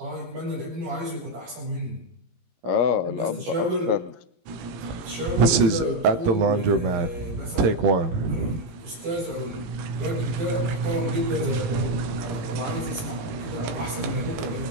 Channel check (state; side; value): late; left; 18 ms